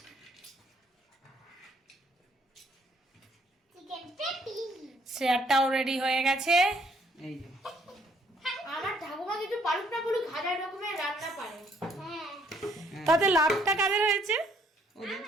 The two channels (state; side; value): normal; both; correlation 0.66